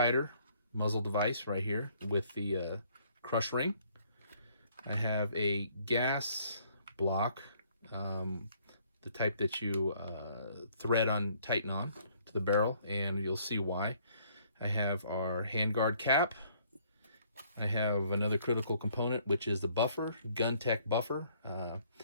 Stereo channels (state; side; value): inverted; both; correlation -0.63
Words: muzzle device right here with the crush ring. I have a gas block, the type that you thread on, tighten on to the barrel, and you'll see why. I have our handguard cap. I have another critical component, which is the buffer, Gun Tech buffer.